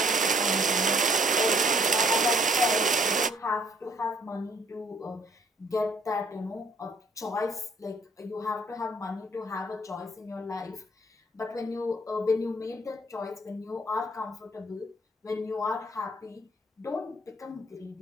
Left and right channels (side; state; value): both; normal; correlation 0.62